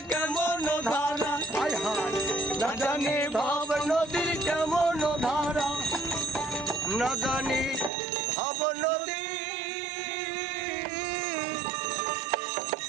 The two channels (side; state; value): left; drops out; at 7.9 s